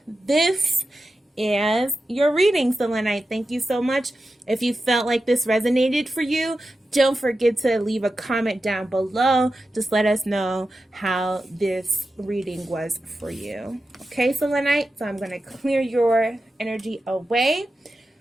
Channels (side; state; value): both; normal; correlation 0.91